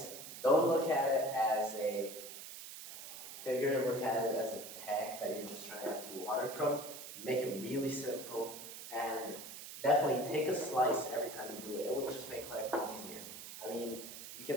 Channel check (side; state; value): right; noise; hiss, 11 dB below the sound